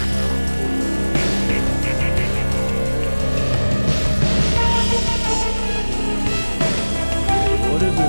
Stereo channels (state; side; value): inverted; both; correlation -1.00